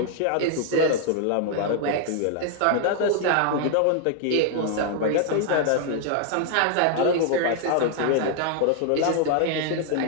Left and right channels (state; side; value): different; both; correlation 0.00